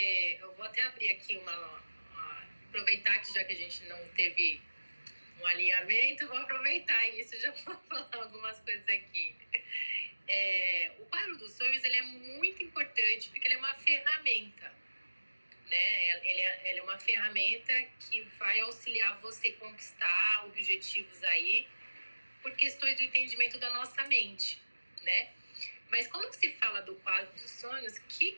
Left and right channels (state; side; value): inverted; both; correlation -1.00